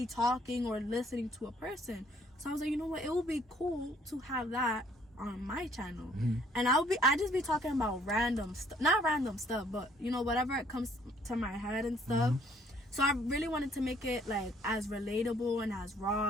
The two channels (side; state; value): both; normal; correlation 0.62